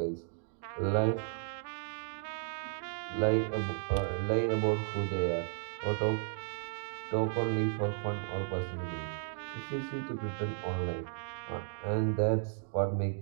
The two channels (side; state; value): left; silent; digital silence